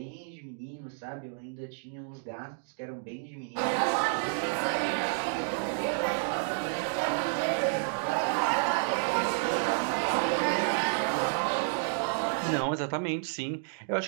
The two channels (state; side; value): silent; left; digital silence